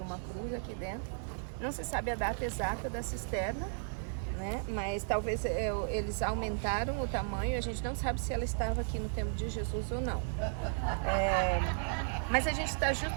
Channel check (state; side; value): silent; left; digital silence